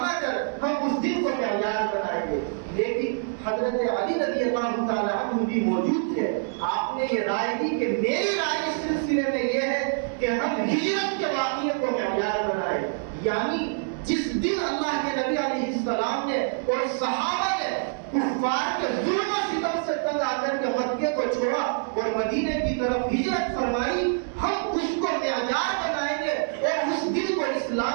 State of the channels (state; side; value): silent; left; digital silence